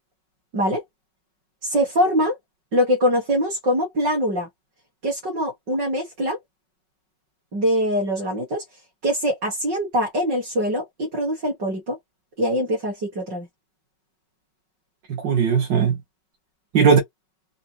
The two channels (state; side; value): late; left; 5.4 ms